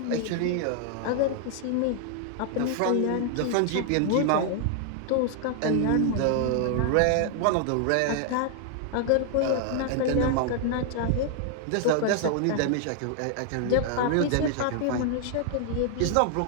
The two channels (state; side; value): different; both; correlation 0.00